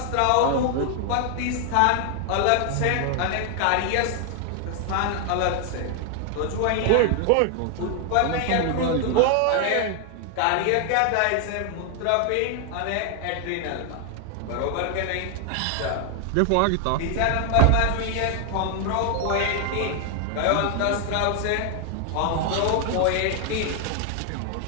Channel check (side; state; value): both; different; correlation 0.00